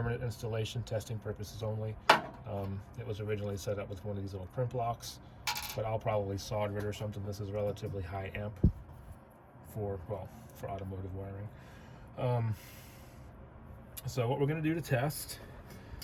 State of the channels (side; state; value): both; identical; correlation 1.00